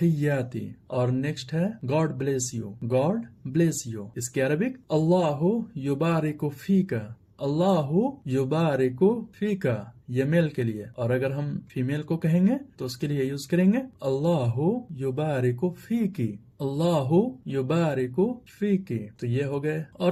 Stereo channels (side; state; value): both; identical; correlation 1.00